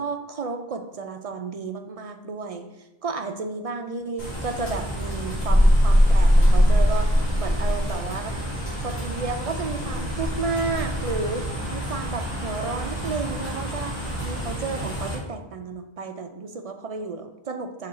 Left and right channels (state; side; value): normal; both; correlation 0.73